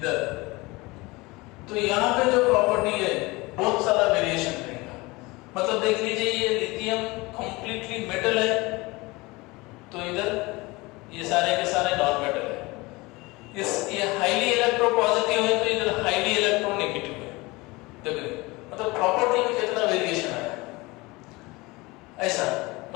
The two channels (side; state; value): right; quieter; 23.1 dB